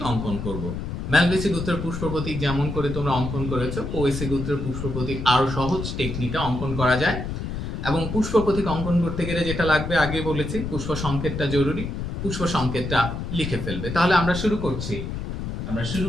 অঙ্কন করব। ম্যালভেসি গোত্রের পুষ্প প্রতীক যেমন করে তোমরা অঙ্কন করেছো, পোয়েসি গোত্রের পুষ্প প্রতীক আরো সহজ টেকনিকে অঙ্কন করা যায়। এবং পুষ্প প্রতীক অঙ্কন করতে গেলে যেটা লাগবে আগে বলেছি, পুষ্প সংকেতটা জরুরি। পুষ্প সংকেতটা লিখে ফেলবে। তাহলে আমরা শুরু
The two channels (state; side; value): noise; left; rumble, 5 dB below the sound